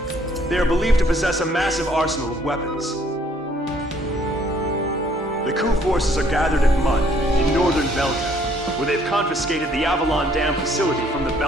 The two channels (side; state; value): both; normal; correlation 0.64